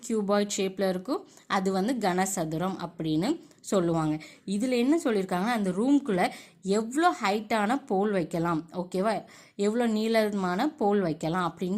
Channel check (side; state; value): both; identical; correlation 1.00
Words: கியூபாய்ட் ஷேப்பில் இருக்கும், அது வந்து கனசதுரம் அப்படின்னு சொல்லுவாங்க. இதில் என்ன சொல்லியிருக்காங்கன்னா அந்த ரூம்குள்ளே எவ்வளோ ஹைட்டான போல் வைக்கலாம், ஓகேவா, எவ்வளோ நீளமான போல் வைக்கலாம்